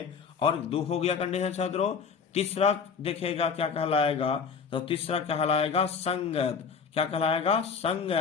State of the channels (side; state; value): right; quieter; 6.0 dB